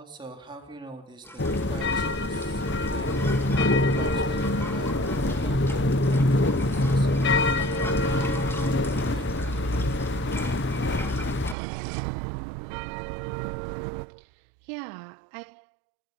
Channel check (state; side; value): drops out; left; at 11.6 s